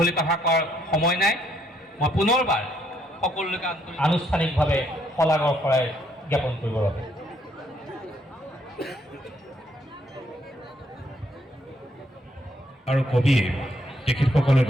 কথা কোৱাৰ সময় নাই মই পুনৰবাৰ সকলোকে আনুষ্ঠানিকভাৱে শলাগৰ শৰাই জ্ঞাপন কৰিবৰ বাবে আৰু কবিয়ে তেখেতসকলে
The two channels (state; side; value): normal; both; correlation 0.71